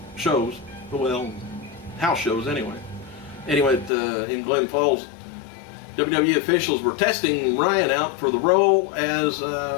shows. Well, house shows anyway. Anyway, in Glens Falls, WWE officials were testing Ryan out for the role as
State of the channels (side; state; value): right; drops out; at 3.9 s